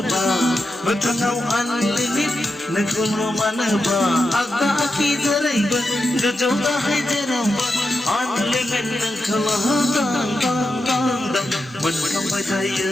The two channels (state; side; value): normal; both; correlation 0.88